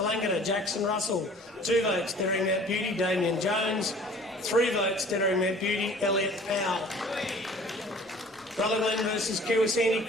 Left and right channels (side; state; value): both; normal; correlation 0.49